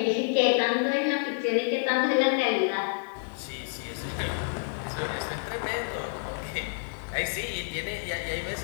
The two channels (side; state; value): right; silent; 59 dB below the other